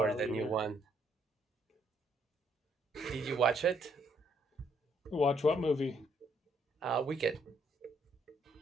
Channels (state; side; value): normal; both; correlation 0.70